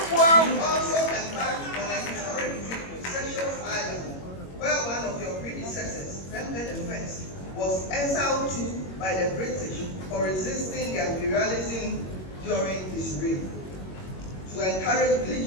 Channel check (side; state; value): right; late; 21 ms